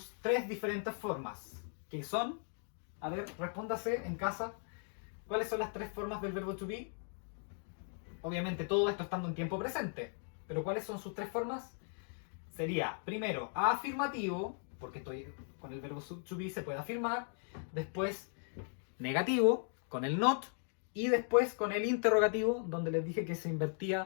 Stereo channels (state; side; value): silent; right; 53 dB below the other